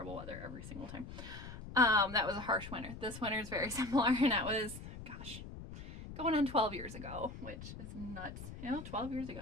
weather every single time. That was a harsh winter. This winter is very similar, and that was, gosh, going on 12 years ago, which is nuts. You know, 12 years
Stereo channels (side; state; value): left; noise; rumble, 11 dB below the sound